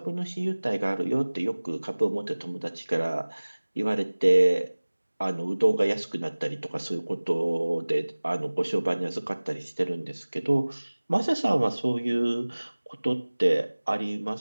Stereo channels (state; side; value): inverted; both; correlation -1.00